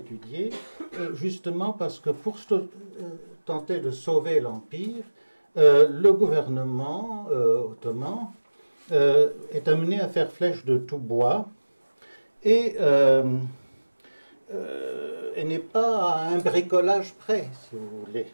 justement parce que pour tenter de sauver l'Empire, le gouvernement ottoman est amené à faire flèche de tout bois et n'est pas à un bricolage près, si vous voulez,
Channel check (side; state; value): both; inverted; correlation -1.00